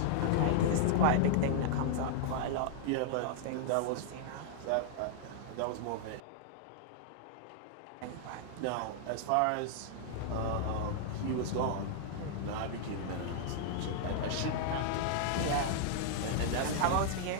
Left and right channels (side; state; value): both; different; correlation -0.01